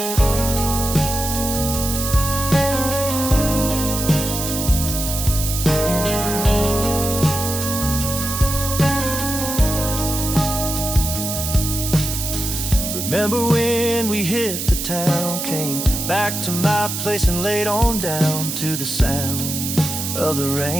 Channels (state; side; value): noise; right; hiss, 4 dB below the sound